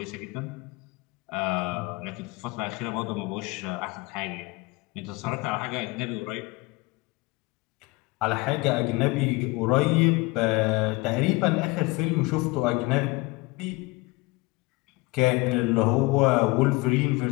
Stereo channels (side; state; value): right; quieter; 23.6 dB